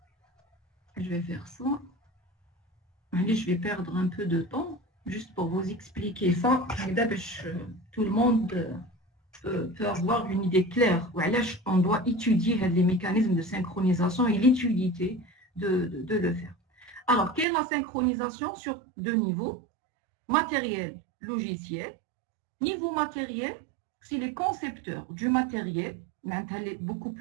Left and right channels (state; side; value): drops out; left; at 17.4 s